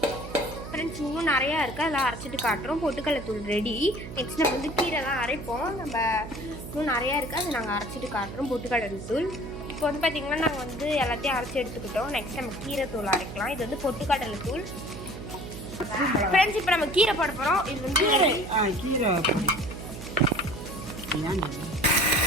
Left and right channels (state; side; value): noise; right; hum, 11 dB below the sound